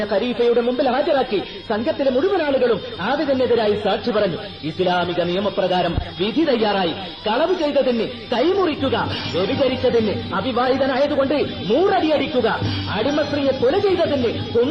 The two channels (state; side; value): identical; both; correlation 1.00